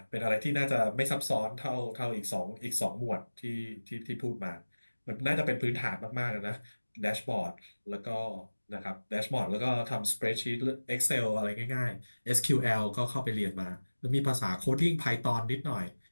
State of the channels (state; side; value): inverted; both; correlation -1.00